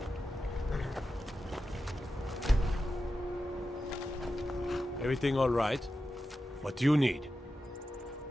Everything all right? What do you need?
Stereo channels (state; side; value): normal; both; correlation 0.91